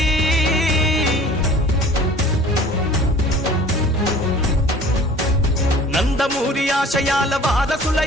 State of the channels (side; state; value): both; normal; correlation 0.47